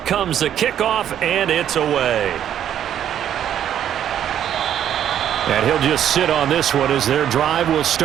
the kickoff, and it's away. And he'll just sit on this one as their drive will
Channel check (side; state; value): left; quieter; 10.2 dB